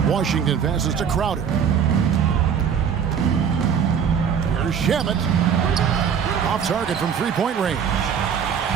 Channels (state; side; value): quieter; left; 7.5 dB